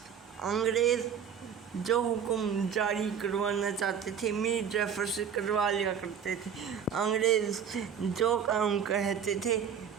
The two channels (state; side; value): quieter; left; 7.7 dB